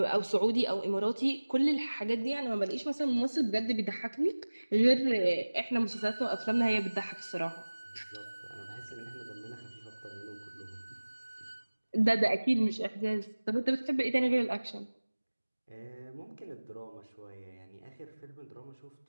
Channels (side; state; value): both; inverted; correlation -1.00